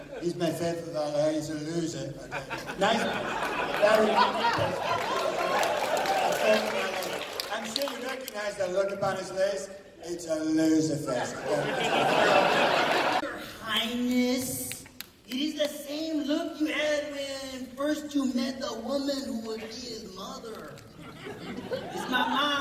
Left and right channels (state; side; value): identical; both; correlation 1.00